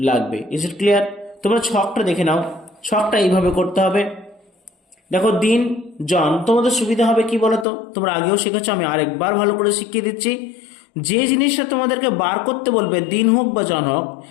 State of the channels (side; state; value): right; drops out; at 7.7 s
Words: লাগবে? Is it clear? তোমরা ছকটা দেখে নাও। ছকটা এইভাবে করতে হবে। দেখো, দিন জন, তোমাদের সুবিধা হবে কি বলতো, তোমরা আগেও শিখেছো, আমি আরেকবার ভালো করে শিখিয়ে দিচ্ছি। যে জিনিসটা তোমাদেরকে বার করতে বলবে, দিন হোক বা জন হোক,